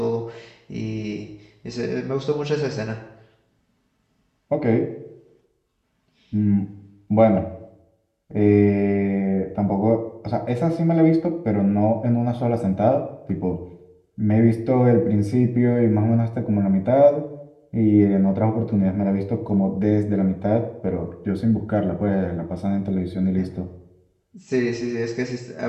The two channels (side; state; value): both; identical; correlation 1.00